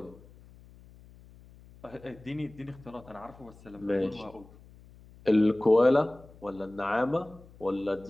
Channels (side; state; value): left; noise; hum, 23 dB below the sound